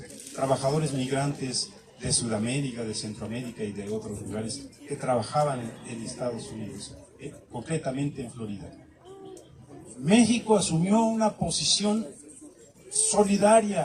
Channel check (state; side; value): identical; both; correlation 1.00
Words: trabajadores migrantes de Sudamérica, de Centroamérica y de otros lugares que trabajaban en Estados Unidos, concretamente en Florida. México asumió una posición solidaria